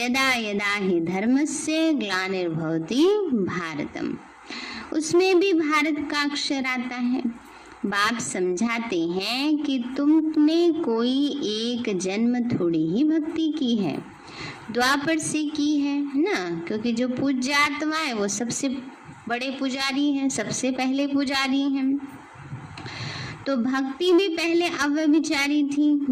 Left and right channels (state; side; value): identical; both; correlation 1.00